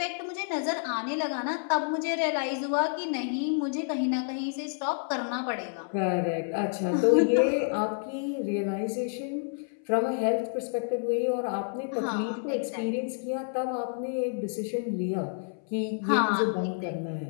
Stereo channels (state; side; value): silent; right; 57 dB below the other